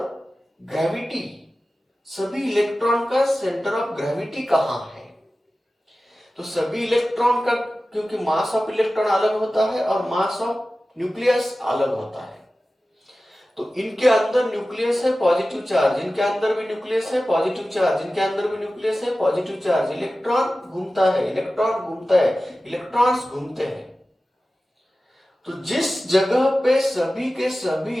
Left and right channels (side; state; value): both; normal; correlation 0.95